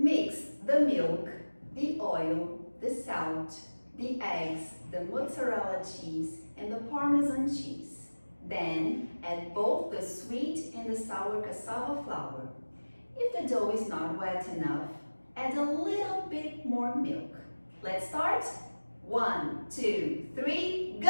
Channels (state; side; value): inverted; both; correlation -1.00